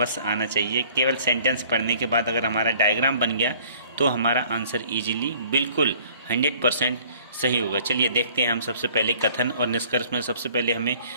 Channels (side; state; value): both; inverted; correlation -0.54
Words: आना चाहिए। केवल सेंटेंस पढ़ने के बाद अगर हमारा डायग्राम बन गया तो हमारा आंसर इजीली बिल्कुल 100% सही होगा। चलिए देखते हैं हम। सबसे पहले कथन और निष्कर्ष में सबसे पहले हमें